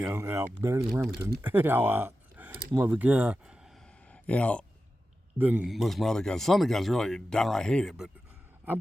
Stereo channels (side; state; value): both; normal; correlation 0.92